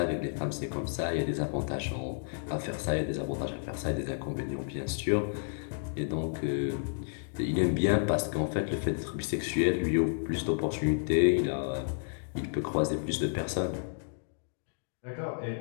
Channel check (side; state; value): right; silent; digital silence